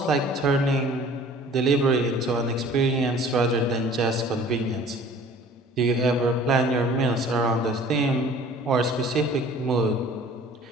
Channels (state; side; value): normal; both; correlation 0.49